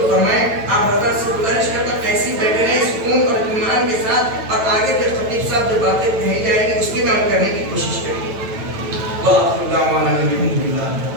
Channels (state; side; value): late; left; 9.1 ms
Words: فرمائے۔ آپ حضرات سے گزارش کرتا ایسے ہی بیٹھے رہیں سکون اور اطمینان کے ساتھ، اور آگے کے خطیب صاحب جو باتیں کہی جائیں گی اس پہ عمل کرنے کی کوشش کریں۔